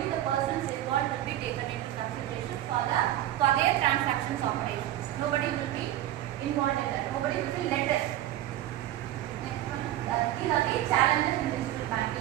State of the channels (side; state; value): left; quieter; 13.6 dB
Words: the persons involved will be taken into consideration for their transactions operations. Nobody will be involved in that. Nobody will be let us. Next one. These are the challenges in digital